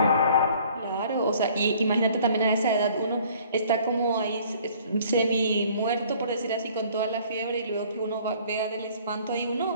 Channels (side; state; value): both; inverted; correlation -0.55